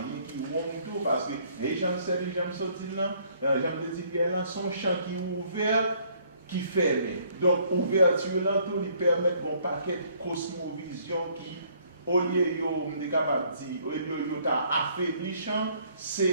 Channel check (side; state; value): both; inverted; correlation -0.63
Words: qui ouvre tout, parce que Haitian Studies, j'aime sortir là, j'aime dire là, son champ qui est ouvert, qui ferme. Donc, ouverture là, tout lui permet un paquet de cosmovision qui au lieu de capable dire, au lieu de affaiblissant,